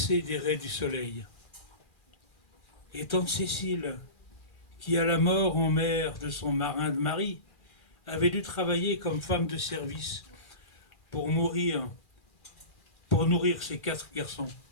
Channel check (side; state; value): right; late; 2.4 ms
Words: des raies du soleil. Et tante Cécile, qui à la mort en mer de son marin de mari, avait dû travailler comme femme de service pour nourrir ses 4 garçons.